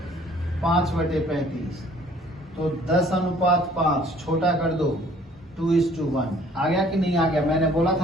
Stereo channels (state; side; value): normal; both; correlation 0.56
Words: 5/35। तो 10:5 छोटा कर दो, 2:1। आ गया कि नहीं आ गया? मैंने बोला